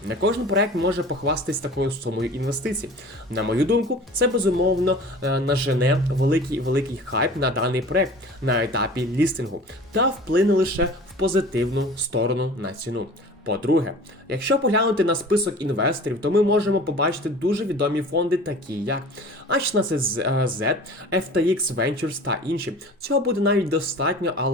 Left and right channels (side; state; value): both; normal; correlation 0.41